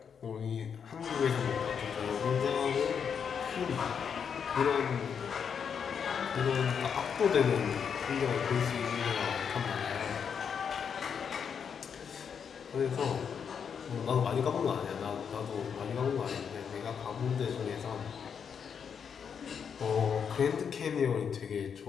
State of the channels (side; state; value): right; quieter; 7.0 dB